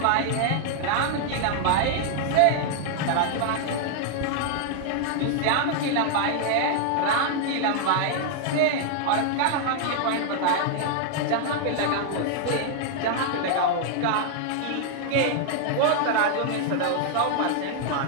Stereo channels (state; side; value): different; both; correlation 0.00